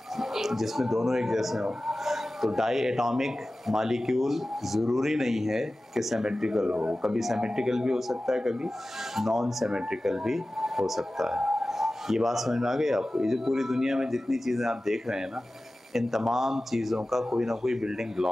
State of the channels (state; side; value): normal; both; correlation 0.96